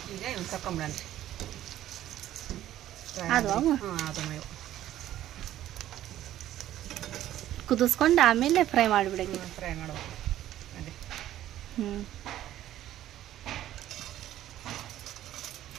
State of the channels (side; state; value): left; quieter; 12.9 dB